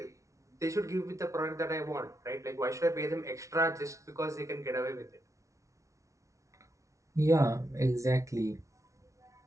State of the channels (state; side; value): late; left; 0.15 ms